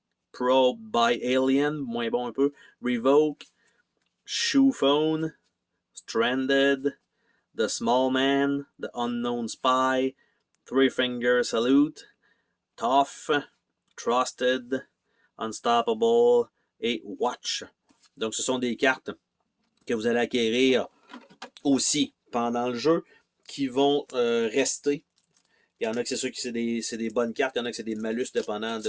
Probed by Alien, moins bon un peu, Revoke, Shoe Phone, Stranded, The Small Man, The Unknown Spy, Three Finger Salute, Tough, Trusted, Unstoppable et Watch. Donc, ce sont des cartes que vous allez acquérir aussi pendant le jeu qui vont rester. Il y en a que c'est sûr que c'est des bonnes cartes, il y en a que c'est des malus dépendant de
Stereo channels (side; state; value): both; identical; correlation 1.00